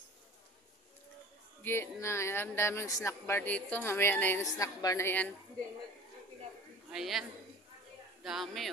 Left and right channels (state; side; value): normal; both; correlation 0.42